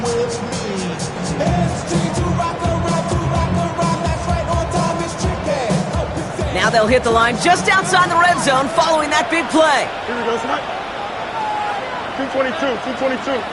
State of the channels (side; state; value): both; identical; correlation 1.00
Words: Now they'll hit the line just outside the red zone following that big play. Here we go, Snap. 222.